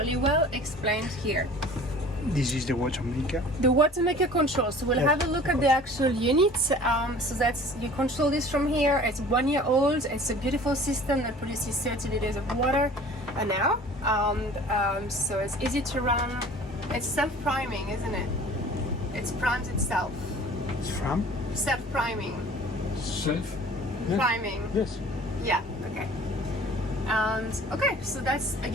well explained here. This is the WATERMAKER. The WATERMAKER control. So we'll have a look at the actual unit. So that's, you control this from here. It's 1 year old. It's a beautiful system that produces 30 liters of water an hour. So it's easy to run. It's self-priming, isn't it? It primes itself. It's from? Self-priming. Self-priming. Yes. Yeah, okay. And okay, so that's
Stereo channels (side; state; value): both; normal; correlation 0.46